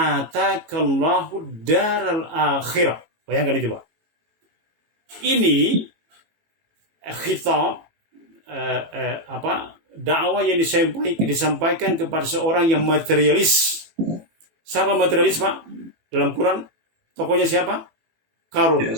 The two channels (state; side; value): late; left; 18 ms